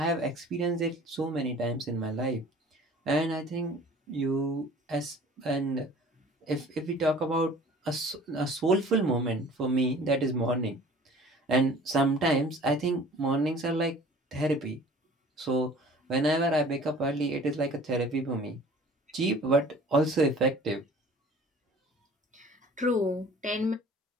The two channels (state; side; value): normal; both; correlation 0.48